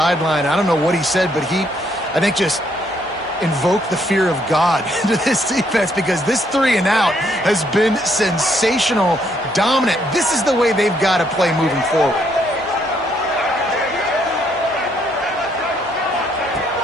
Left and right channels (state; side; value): normal; both; correlation 0.71